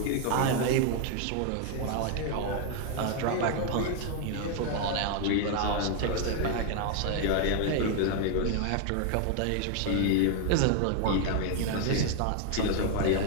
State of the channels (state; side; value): different; both; correlation 0.00